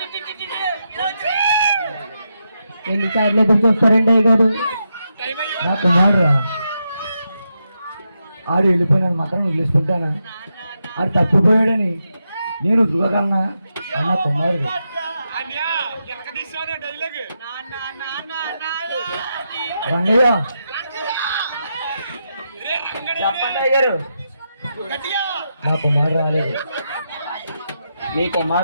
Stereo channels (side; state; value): both; inverted; correlation -0.85